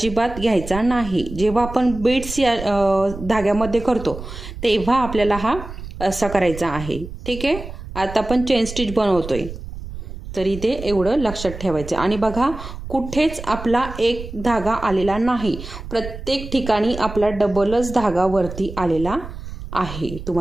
घ्यायचा नाही. जेव्हा आपण बीड्स या धाग्यामध्ये करतो तेव्हा आपल्याला हा असा करायचा आहे. ठीक आहे, आता आपण चेन स्टिच बनवतोय तर इथे एवढं लक्षात ठेवायचं. आणि बघा, कुठेच आपला एक धागा आलेला नाही, प्रत्येक ठिकाणी आपला डबलच धागा वरती आलेला आहे.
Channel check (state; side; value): noise; right; rumble, 11 dB below the sound